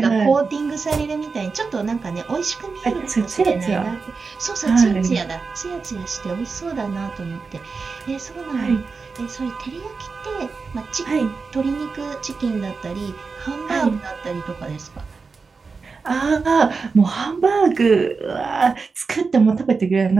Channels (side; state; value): left; quieter; 4.7 dB